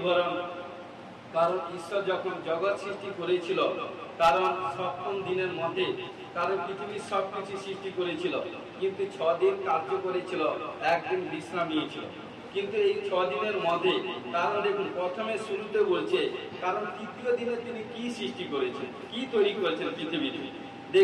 কারণ ঈশ্বর যখন জগৎ সৃষ্টি করেছিল কারণ সপ্তম দিনের মধ্যে কারণ পৃথিবীর সবকিছু সৃষ্টি করেছিল কিন্তু 6 দিন কার্য করেছিল একদিন বিশ্রাম নিয়েছিল কিন্তু এই 6 দিনের মধ্যে কারণ দেখুন প্রথমে শুরুতে বলছে কারণ তৃতীয় দিনে তিনি কি সৃষ্টি করেছেন কি তৈরি করেছেন পৃথিবীতে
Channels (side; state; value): both; identical; correlation 1.00